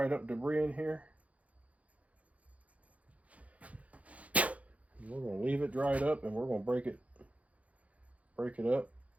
up debris in here. We're going to leave it dried up, and we're going to break it up.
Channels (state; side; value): late; left; 0.067 ms